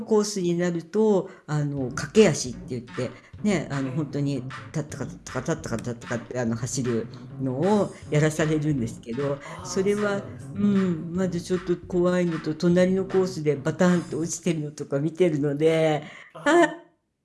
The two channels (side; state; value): both; identical; correlation 1.00